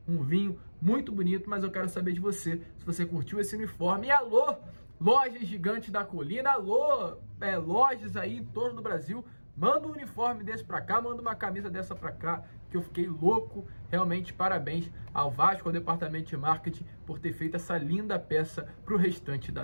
um vinho muito bonito, mas eu quero saber de você, se você curtiu esse uniforme. E alô, lojas Gigante da Colina, alô, lojas aí em torno do Brasil, Manda um uniforme desse pra cá, manda uma camisa dessa pra cá, que eu fiquei louco. Realmente, parabéns ao Vasco, ao departamento de marketing, por ter feito essa linda peça pro restante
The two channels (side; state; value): both; inverted; correlation -1.00